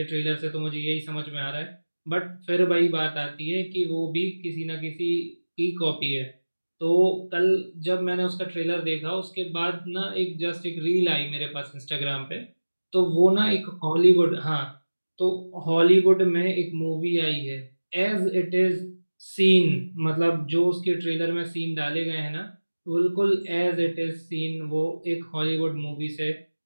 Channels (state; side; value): inverted; both; correlation -1.00